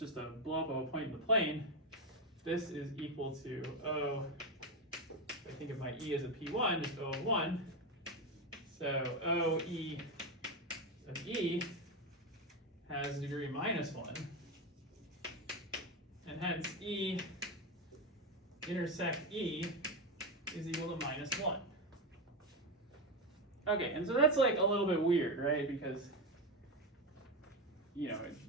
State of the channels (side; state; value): both; normal; correlation 0.12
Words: a blow up of a point in the plane, this is equal to O, if I think of my E as a P1, just O of 1. So O E of E has degree -1. And hence E intersect E is equal to -1. Okay, and so that's like a little bit weird, right? Because,